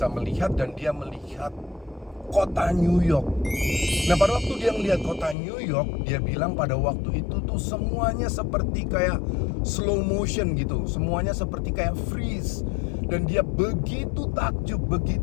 melihat, dan dia melihat kota New York. Nah, pada waktu dia melihat kota New York, dia bilang pada waktu itu tuh semuanya seperti kayak slow motion gitu, semuanya seperti kayak freeze, dan dia begitu takjub,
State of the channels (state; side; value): drops out; right; at 5.4 s